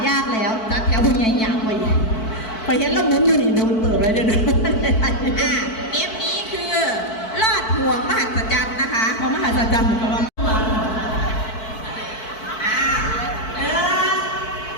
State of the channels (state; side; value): late; right; 4.5 ms